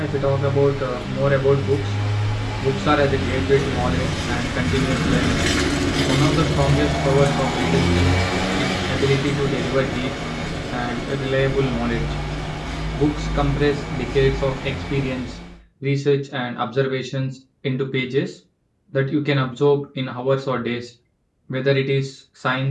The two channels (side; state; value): both; identical; correlation 1.00